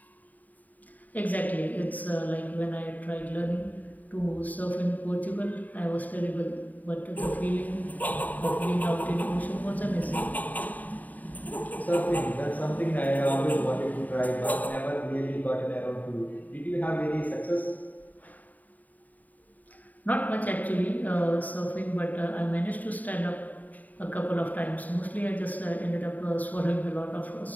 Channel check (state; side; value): late; right; 0.078 ms